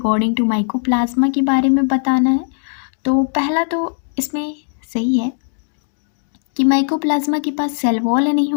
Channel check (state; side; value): silent; right; digital silence